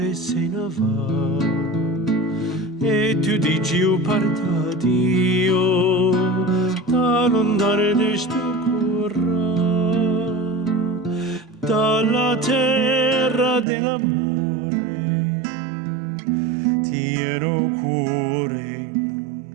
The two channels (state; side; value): drops out; left; at 13.7 s